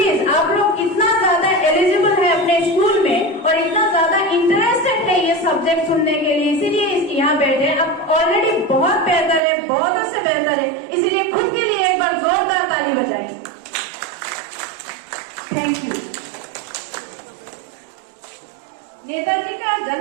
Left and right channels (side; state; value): left; drops out; at 9.4 s